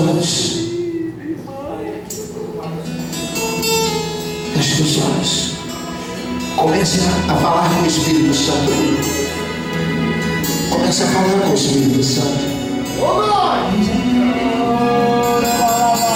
Feche os seus olhos. Comece a falar com o Espírito Santo. Comece a falar com o Espírito Santo.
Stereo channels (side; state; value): both; identical; correlation 1.00